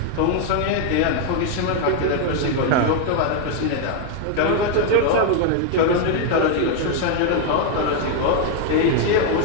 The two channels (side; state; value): both; different; correlation 0.01